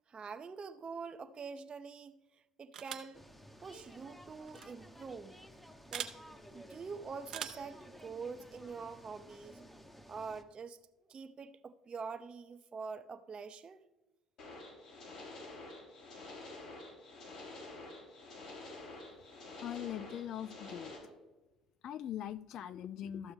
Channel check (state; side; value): normal; both; correlation 0.62